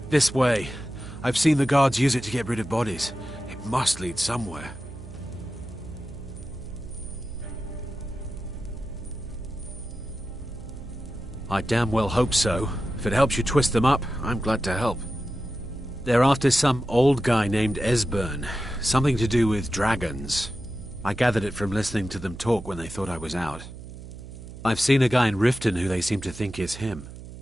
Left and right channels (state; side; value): noise; right; hum, 14 dB below the sound